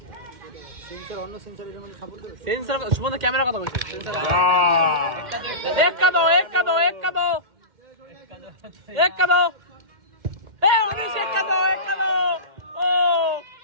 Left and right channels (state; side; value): late; left; 2.1 ms